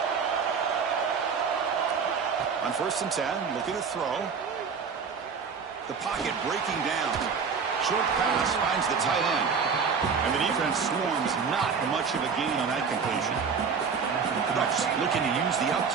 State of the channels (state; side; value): quieter; left; 5.8 dB